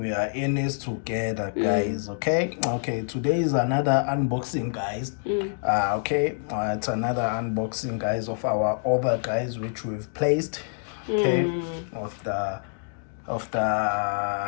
are in this together, guys. Okay, today is another unboxing, guys. It's another unboxing, guys, of our order, guys, which we've placed, of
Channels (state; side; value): silent; right; digital silence